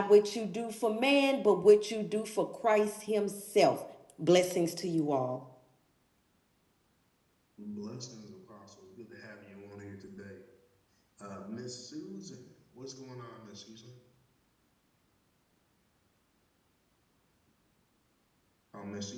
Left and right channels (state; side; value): identical; both; correlation 1.00